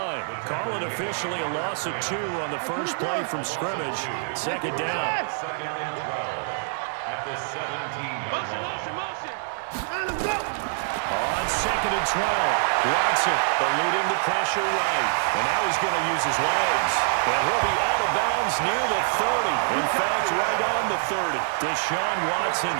Call it officially a loss of 2 on the first play from scrimmage. Second down. Second and 12 at the 17-yard line. Motion. On second and 12, Watson eluding the pressure right. And now he's going to use his legs. And he'll be out of bounds near the 30. In fact, right on the 30. Deshaun Watson,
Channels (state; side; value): silent; left; 61 dB below the other